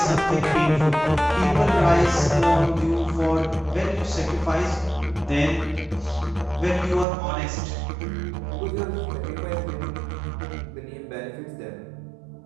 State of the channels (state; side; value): drops out; left; at 7.1 s